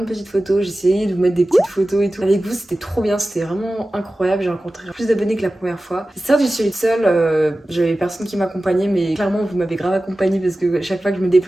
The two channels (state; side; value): normal; both; correlation 0.95